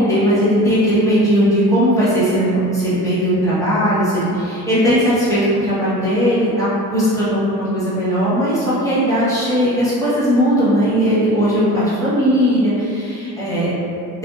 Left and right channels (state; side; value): normal; both; correlation 0.38